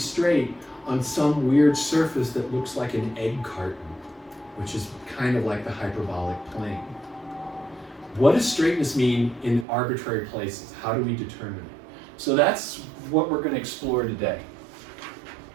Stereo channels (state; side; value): drops out; left; at 9.7 s